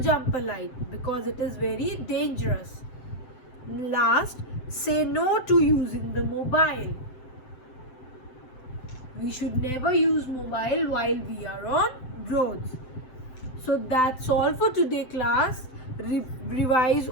jump a light because it is very dangerous. Last, say no to using the mobile. We should never use mobile while we are on roads. So that's all for today, class. Revise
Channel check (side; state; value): right; late; 7.8 ms